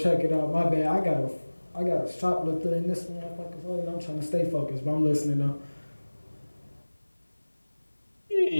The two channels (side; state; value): both; inverted; correlation -1.00